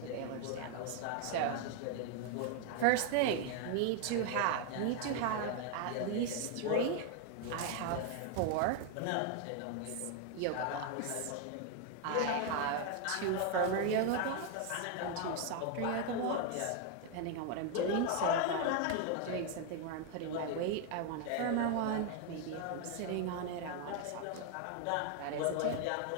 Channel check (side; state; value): both; different; correlation 0.01